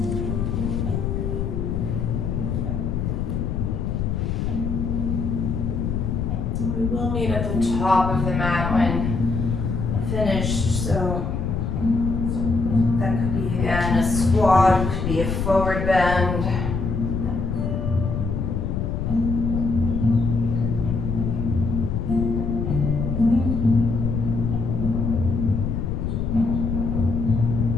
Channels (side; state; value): left; noise; rumble, 1 dB below the sound